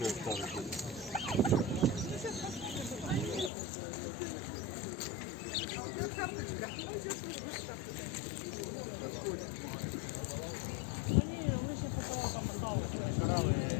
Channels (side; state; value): right; drops out; at 3.5 s